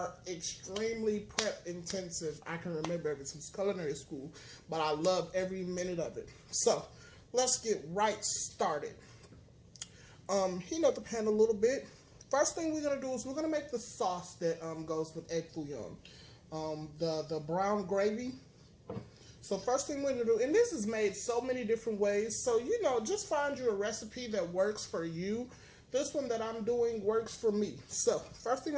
extremely prep intensive. I can remember ever since culinary school, but I love every minute of it. So let's get right started. Heat up the pan a little bit. First thing we're gonna do is we're gonna make the sauce that goes with egg foo young. The brown gravy. So first thing we're going to do, and this is made so many different ways, so just find you a recipe that works for you. This one that I'm doing works for me. So first thing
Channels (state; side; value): identical; both; correlation 1.00